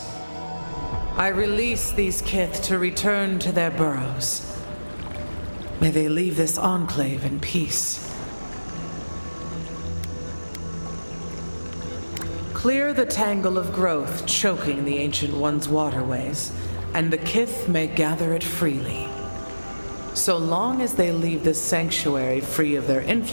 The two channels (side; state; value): both; inverted; correlation -1.00